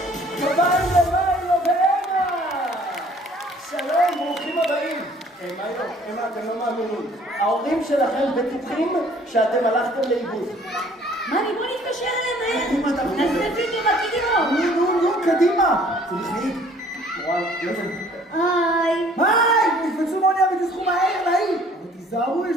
אמה, אתם לא מאמינים. ההורים שלכם בטוחים שאתם הלכתם לאיבוד. מאמי, בוא נתקשר אליהם מהר. נזנפים עם הכידירות. נו, קדימה. זה מחליט. מורן, יוזם. היי. היי, נקפצו מאוניה ותזכו מהר לעיר. אבל תיזהרו, יש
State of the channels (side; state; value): both; normal; correlation 0.56